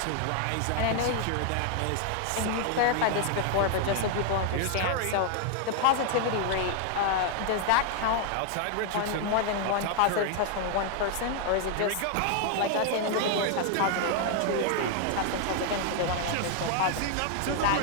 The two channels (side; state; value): both; different; correlation 0.00